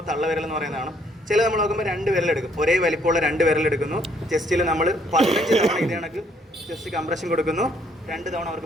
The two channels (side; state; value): both; normal; correlation 0.67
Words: തള്ളവിരൽ എന്ന് പറയുന്നതാണ്. ചില നമ്മൾ നോക്കുമ്പോൾ 2 വിരലെടുക്കും, ഒരേ വലിപ്പമുള്ള 2 വിരലെടുക്കുന്നു. ചെസ്റ്റിൽ നമ്മൾ 15 തവണ ഇത് കണക്ക് ചെസ്റ്റ് കംപ്രഷൻ കൊടുക്കുന്നു, 2 തവണ